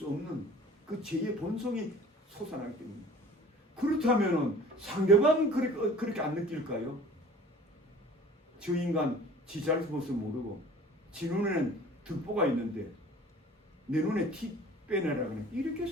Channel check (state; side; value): normal; both; correlation 0.46